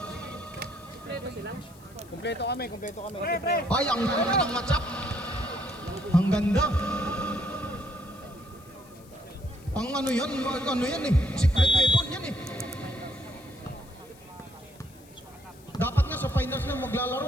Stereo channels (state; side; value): noise; left; hiss, 25 dB below the sound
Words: Kompleto kami. Ay, ang ganda ng matchup. Ang ganda. Ang ano yan eh. Secret weapon yan eh. Dapat nga sa finals na